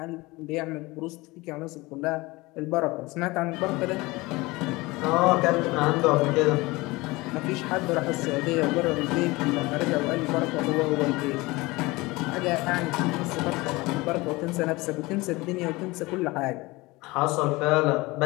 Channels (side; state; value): right; quieter; 22.2 dB